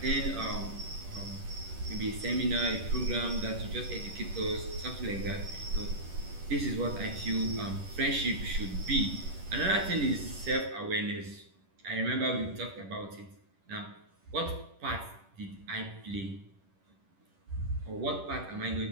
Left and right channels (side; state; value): left; late; 10 ms